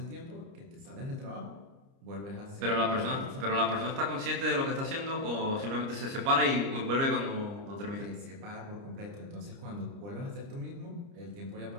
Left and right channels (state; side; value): late; left; 30 ms